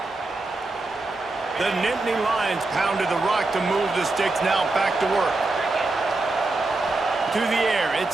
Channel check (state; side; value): quieter; left; 3.2 dB